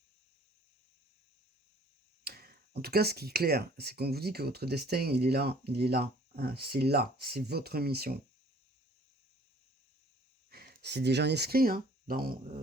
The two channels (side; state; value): both; normal; correlation 0.55